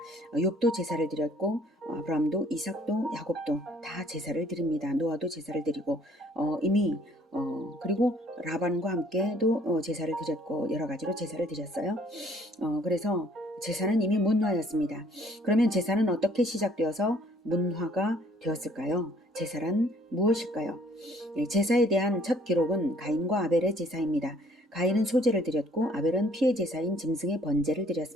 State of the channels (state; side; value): normal; both; correlation 0.59